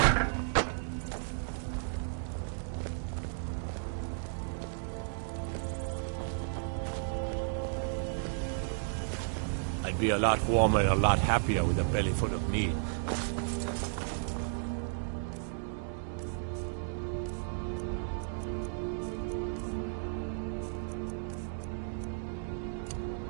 I'd be a lot warmer and a lot happier with a belly full of meat.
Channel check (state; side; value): silent; left; digital silence